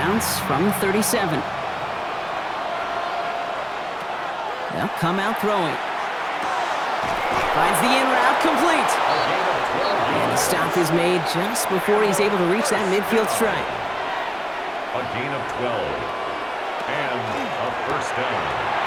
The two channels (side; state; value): both; identical; correlation 1.00